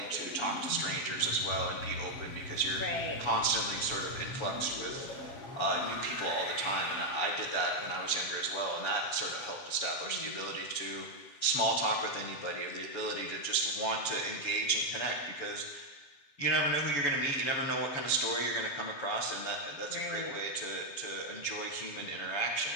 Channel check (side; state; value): right; late; 7.1 ms